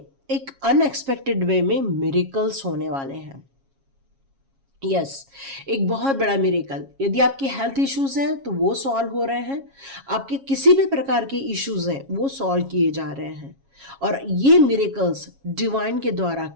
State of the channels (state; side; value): late; left; 7.3 ms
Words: एक अनएक्सपेक्टेड वे में मिरेकल्स होने वाले हैं। यस, एक बहुत बड़ा मिरेकल। यदि आपकी हेल्थ इश्यूज हैं तो वो सॉल्व हो रहे हैं, आपके किसी भी प्रकार के इश्यूज हैं वो सॉल्व किए जा रहे हैं, और ये मिरेकल्स डिवाइन के द्वारा